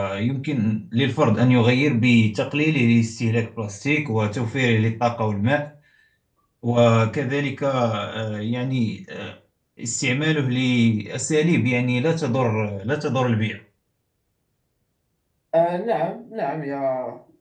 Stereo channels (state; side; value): identical; both; correlation 1.00